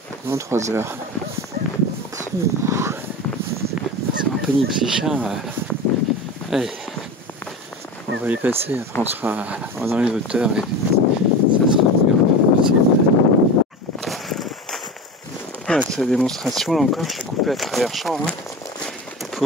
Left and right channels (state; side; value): normal; both; correlation 0.28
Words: pendant 3 heures. C'est un peu pénible ces chiens. Allez, on va les passer, après on sera dans les hauteurs et ça sera possible. Voilà, c'est la démonstration, là encore, je suis coupé à travers champ